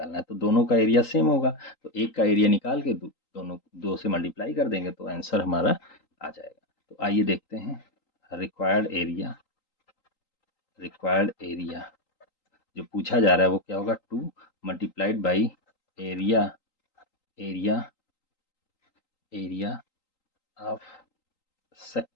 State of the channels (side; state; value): right; late; 3.8 ms